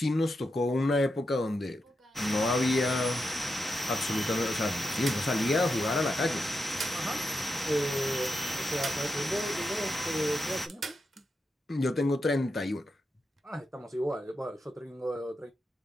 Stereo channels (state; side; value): normal; both; correlation 0.87